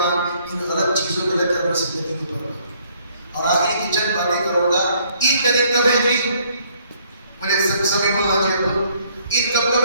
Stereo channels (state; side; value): inverted; both; correlation -0.64